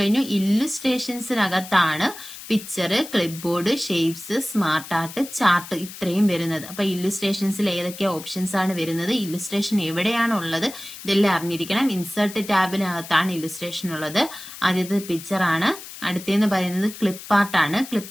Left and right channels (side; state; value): left; noise; hiss, 14 dB below the sound